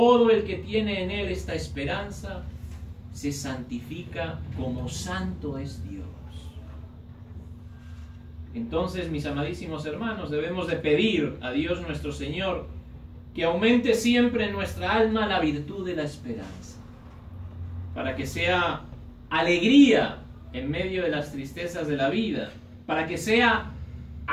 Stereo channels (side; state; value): both; identical; correlation 1.00